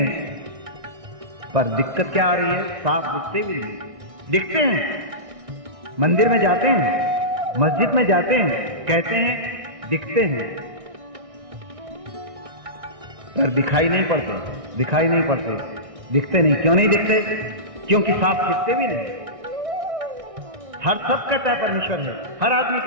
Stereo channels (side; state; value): left; late; 1.6 ms